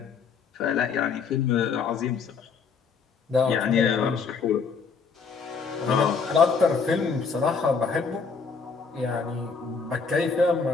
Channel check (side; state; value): right; quieter; 5.3 dB